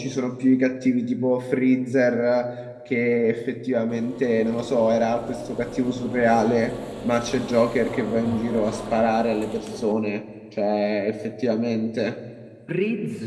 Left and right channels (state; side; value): identical; both; correlation 1.00